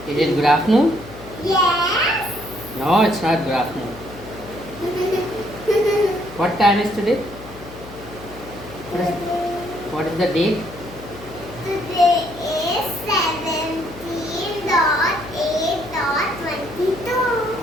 it good afternoon? Yes. No, it's not good afternoon. What time is today? What is the date? Today is 17.8.22.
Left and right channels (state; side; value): noise; left; hum, 17 dB below the sound